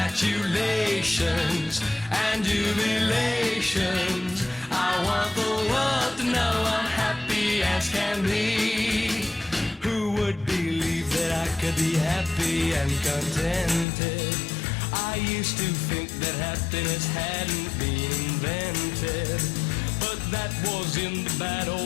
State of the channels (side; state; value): right; drops out; at 13.9 s